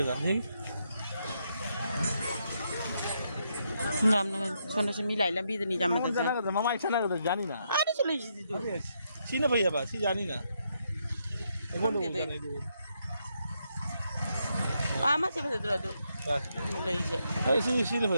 का नहीं नाम ना सोने से मिलाई लंबी तो नहीं जम मत जाना का मामा इच्छा ना का जानी ना अरे चले जी दो सी ना भैया बा सी जानी ना कौन दे दे आमा से बता दो ले जे ए सी ना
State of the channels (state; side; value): inverted; both; correlation -0.79